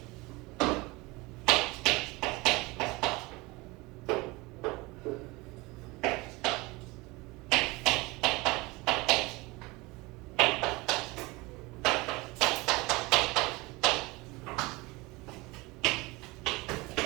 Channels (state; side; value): quieter; left; 23.4 dB